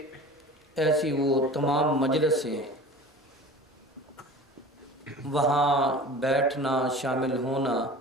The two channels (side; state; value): both; normal; correlation 0.39